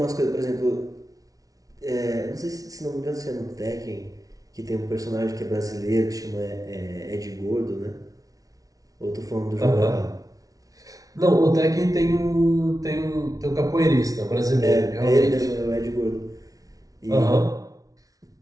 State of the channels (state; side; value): late; left; 0.18 ms